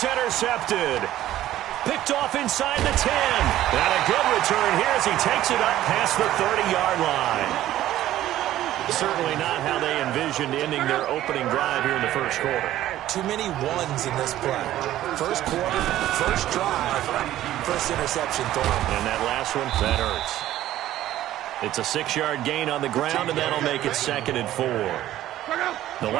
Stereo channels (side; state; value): left; quieter; 13.7 dB